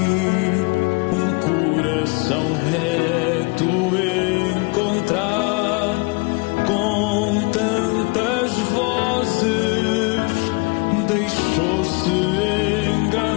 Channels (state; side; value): quieter; right; 28.5 dB